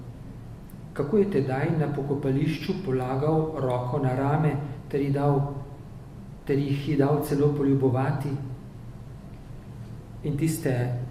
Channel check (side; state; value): both; identical; correlation 1.00